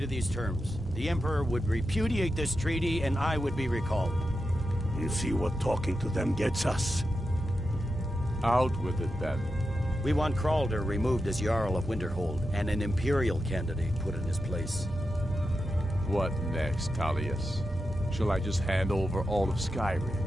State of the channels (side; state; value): both; normal; correlation 0.89